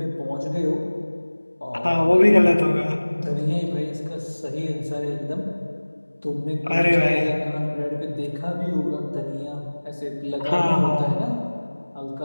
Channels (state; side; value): inverted; both; correlation -1.00